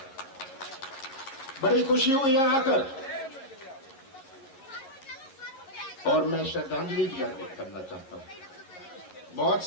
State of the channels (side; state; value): right; late; 11 ms